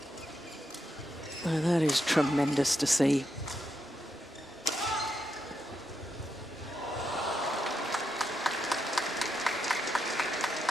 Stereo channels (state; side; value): normal; both; correlation 0.83